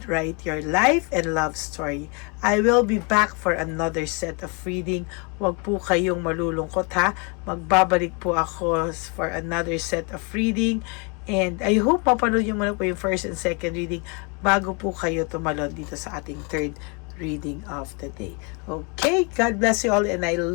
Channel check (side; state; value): right; quieter; 33.3 dB